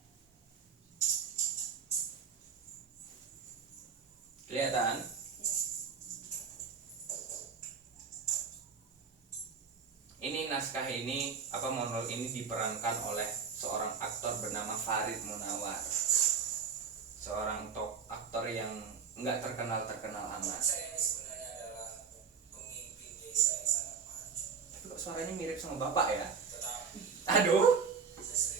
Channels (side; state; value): left; quieter; 6.0 dB